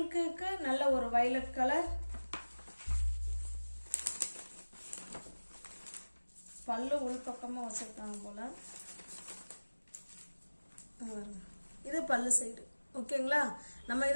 நல்ல ஒரு வைலட் கலர். பல்லு உள் பக்கமா வச்சிருக்காங்க போல. இது பல்லு சைடு. ஓகேங்களா, நம்ம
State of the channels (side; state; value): both; inverted; correlation -1.00